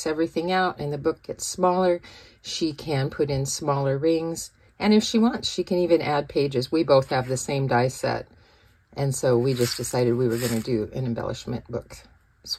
everything out and the book gets smaller, she can put in smaller rings, and if she wants, she can even add pages. We both have the same die set. And so we just decided we were going to do an embellishment book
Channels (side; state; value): both; identical; correlation 1.00